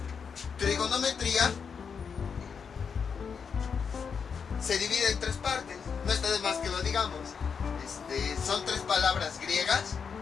Trigonometría se divide en tres partes, no está de más que lo digamos. Son tres palabras griegas.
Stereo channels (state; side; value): quieter; right; 6.3 dB